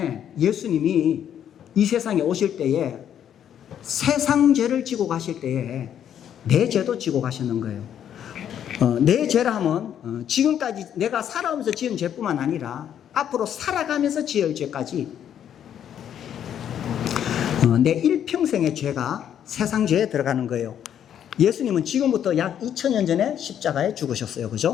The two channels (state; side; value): quieter; right; 9.6 dB